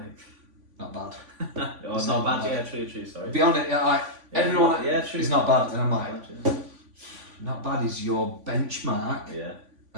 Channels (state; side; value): late; left; 3.5 ms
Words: Not bad. Oh, it's not bad. Yeah, true. Sorry. Be honest, everyone. True. It's not bad, and I'm like, not bad is your benchmark